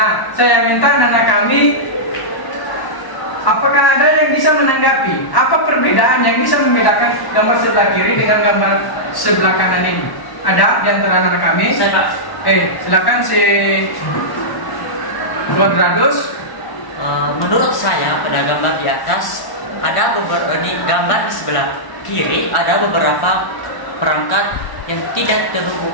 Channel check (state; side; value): late; right; 1.1 ms